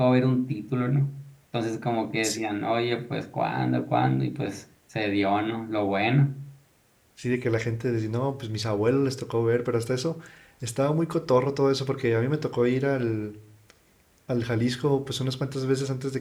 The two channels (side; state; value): both; identical; correlation 1.00